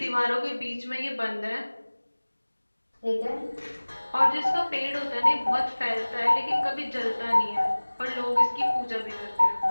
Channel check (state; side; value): inverted; both; correlation -1.00